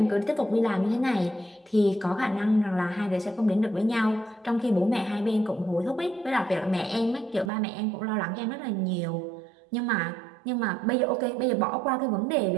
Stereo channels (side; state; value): left; drops out; at 7.5 s